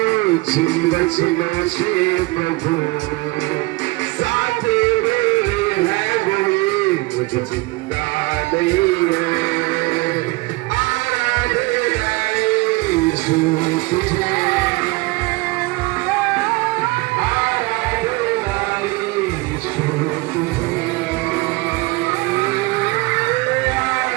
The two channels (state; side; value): quieter; left; 23.7 dB